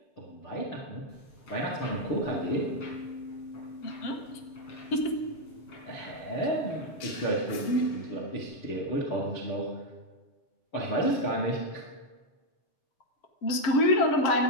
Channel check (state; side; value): late; right; 7.5 ms